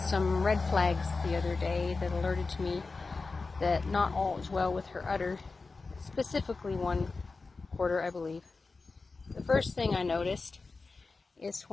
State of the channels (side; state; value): right; quieter; 4.0 dB